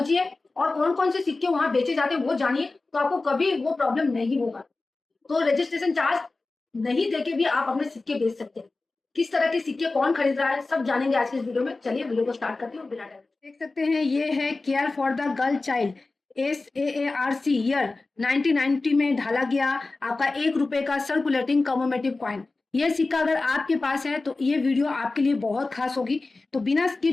और कौन कौन से सिक्के वहां बेचे जाते हैं वो जानिए, तो आपको कभी वो प्रॉब्लम नहीं होगा। तो रजिस्ट्रेशन चार्ज नहीं देके भी आप अपने सिक्के बेच सकते हैं। किस तरह के सिक्के कौन खरीद रहा है सब जानेंगे आज के इस वीडियो में। चलिए वीडियो को स्टार्ट करते हैं बिना टाइम। देख सकते हैं ये है care for the girl child, SAARC year 1990 में ढाला गया आपका 1 रुपए का सर्कुलेटिंग कमोमेटिव कॉइन। ये सिक्का अगर आपके पास है तो ये वीडियो आपके लिए बहुत खास होगी, तो बिना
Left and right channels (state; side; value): quieter; right; 3.5 dB